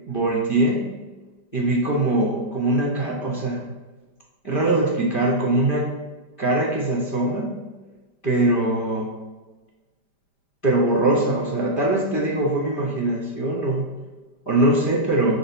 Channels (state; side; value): late; right; 5.0 ms